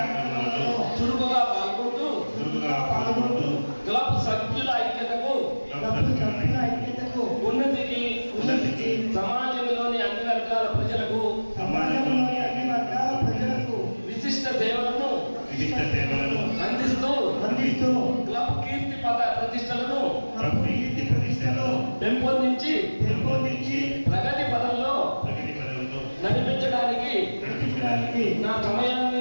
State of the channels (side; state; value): both; inverted; correlation -1.00